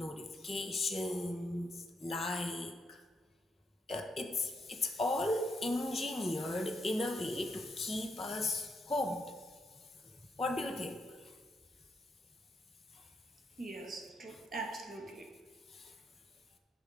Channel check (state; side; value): normal; both; correlation 0.80